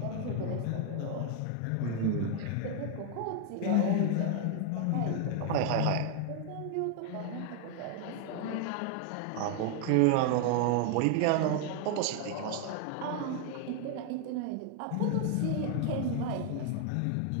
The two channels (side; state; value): both; different; correlation 0.00